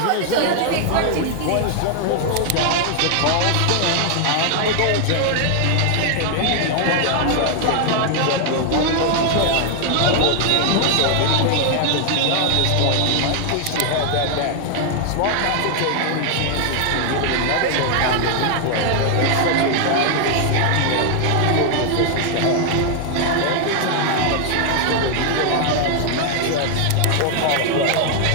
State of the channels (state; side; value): different; both; correlation 0.00